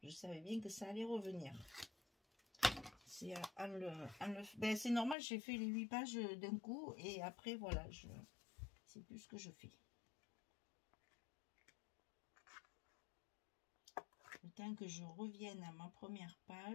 Je savais bien que ça allait revenir. C'est c'est normal, j'ai fait les 8 pages d'un coup. Et après, voilà, c'est plus ce que je fais. Le temps que je revienne à ma première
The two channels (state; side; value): drops out; right; at 5.2 s